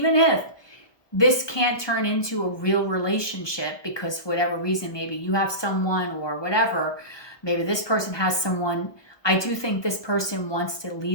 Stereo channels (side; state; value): right; late; 1.2 ms